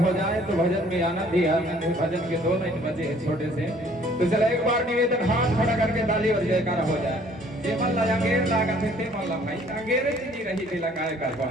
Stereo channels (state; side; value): normal; both; correlation 0.58